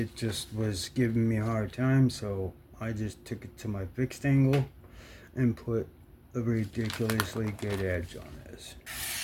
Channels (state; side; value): identical; both; correlation 1.00